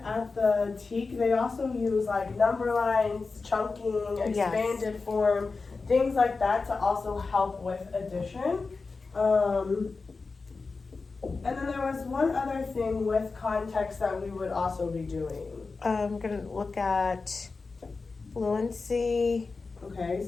at the TEK, they also use like number lines, chunking, expanded form, things like that to also help with addition. And then there was one other thing with context that we would also be doing. I'm going to look at fluency. Okay,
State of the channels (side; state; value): right; quieter; 4.2 dB